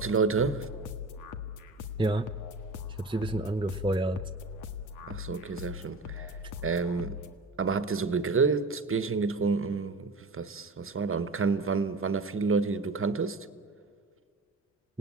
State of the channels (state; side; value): quieter; left; 3.4 dB